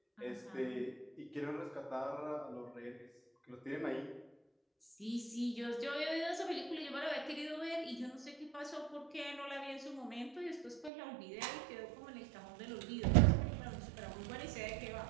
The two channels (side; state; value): left; drops out; at 10.9 s